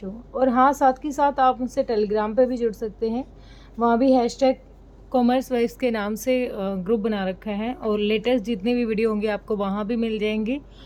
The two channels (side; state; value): both; identical; correlation 1.00